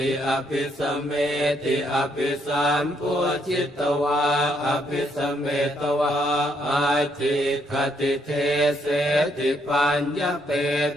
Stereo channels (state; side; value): normal; both; correlation 0.73